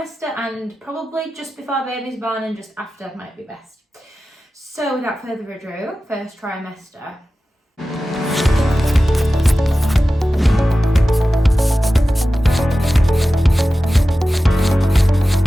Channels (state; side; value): normal; both; correlation 0.95